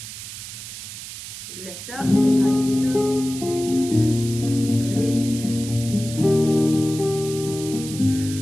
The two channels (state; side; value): noise; right; hiss, 11 dB below the sound